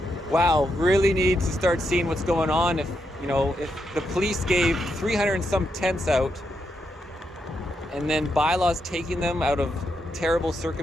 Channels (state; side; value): normal; both; correlation 0.82